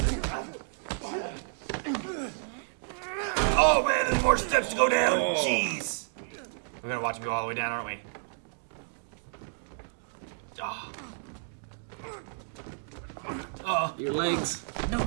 Oh man, there's more steps to go down. Jeez. We're gonna watch him go all the way down, aren't we? Your legs. No,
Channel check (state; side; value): silent; left; digital silence